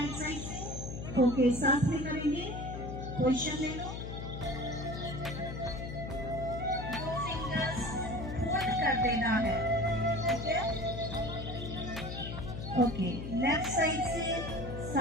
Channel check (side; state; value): left; noise; hum, 7 dB below the sound